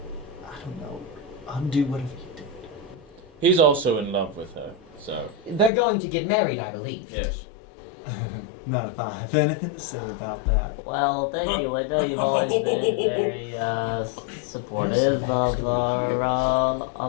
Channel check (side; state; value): right; drops out; at 5.7 s